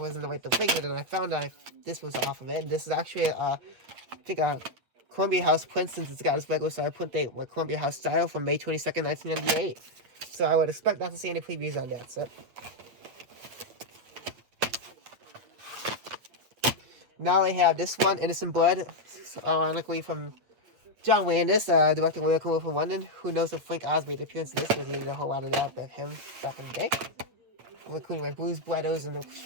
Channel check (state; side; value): late; left; 8.5 ms